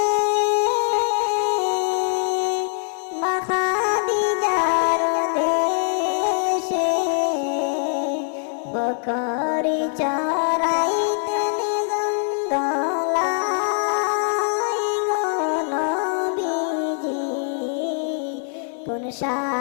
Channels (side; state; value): right; silent; 64 dB below the other